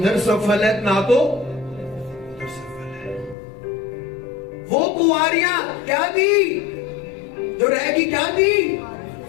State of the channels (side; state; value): right; drops out; at 3.4 s